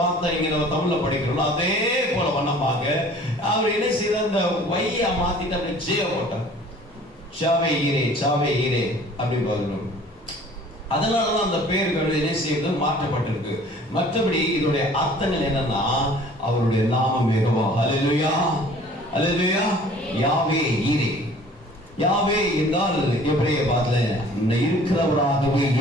இங்க நம்ம தமிழ்ல படிக்கிறோம். அதே போல வண்ணமாக அவர் என்ன செய்தார், இந்த வையா மாத்திட்டு அப்படி ஜே போட்டார், சாவே ஈரே சாவே ஈரே அப்படின்னு சொல்லணும். அதனாலதான் அந்த பெயர்கள் என்ன செய்வது மாற்றப்பட்டிருக்கு. மற்றபடி இதோடைய அர்த்தங்கள் என்னன்னா, அவருடைய நாமம் யெகோவா. அல்லேலூயா அல்லேலூயா. யாவே ஈரே, யாவே என்றால் எபிரேய பாஷையில இருக்கிறவராகவே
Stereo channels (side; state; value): both; normal; correlation 0.50